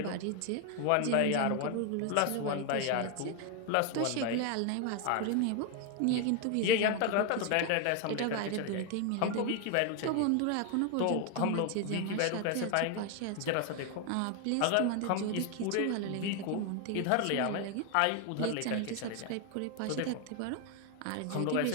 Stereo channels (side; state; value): both; different; correlation 0.01